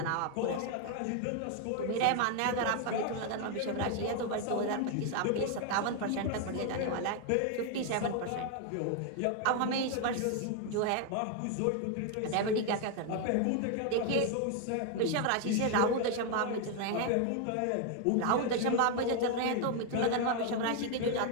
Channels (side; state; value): both; different; correlation 0.01